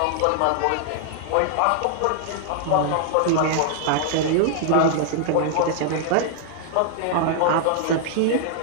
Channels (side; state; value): both; different; correlation -0.01